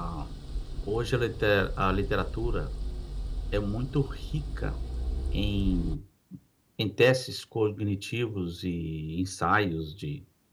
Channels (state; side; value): identical; both; correlation 1.00